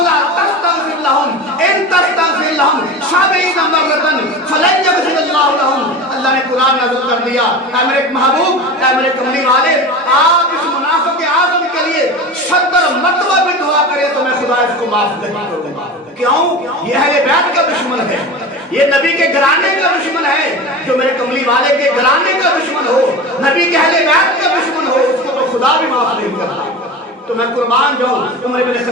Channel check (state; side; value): normal; both; correlation 0.30